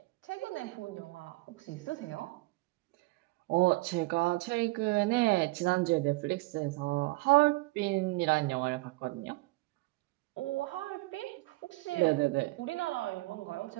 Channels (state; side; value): quieter; left; 22.8 dB